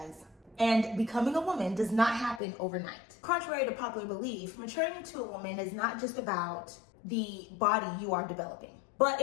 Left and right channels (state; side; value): drops out; right; at 2.4 s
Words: And becoming a woman does not happen overnight. Contrary to popular belief, maturing into a woman is not just about the body you are developing, but